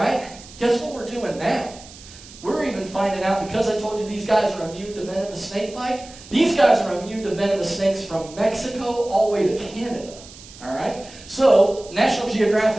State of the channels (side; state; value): right; noise; hiss, 19 dB below the sound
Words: Guess what we're doing now? We're even finding out, because I told you these guys are immune to venomous snake bite, these guys are immune to venomous snakes from Mexico all the way to Canada. All right? So National